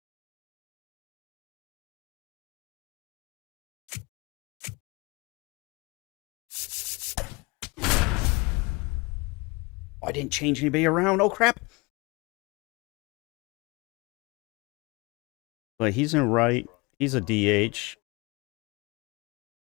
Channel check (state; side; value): quieter; right; 26.1 dB